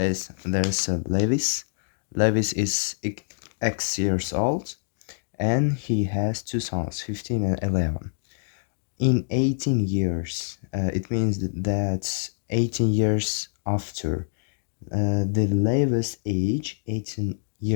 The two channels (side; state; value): right; silent; digital silence